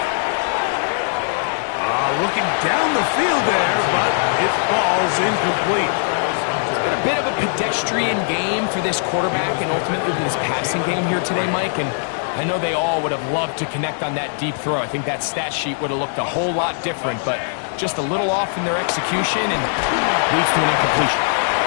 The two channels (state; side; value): silent; right; 66 dB below the other